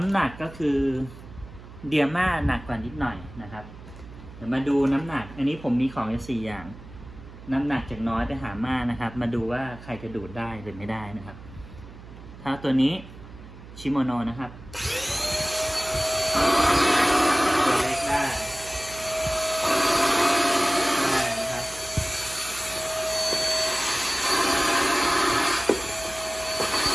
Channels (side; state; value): right; noise; hum, 17 dB below the sound